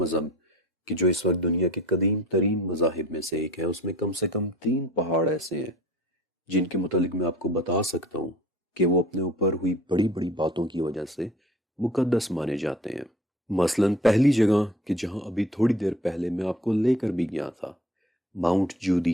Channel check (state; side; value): normal; both; correlation 0.46